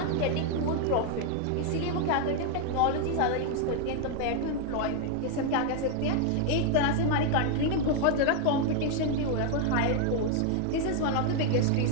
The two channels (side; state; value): both; different; correlation 0.00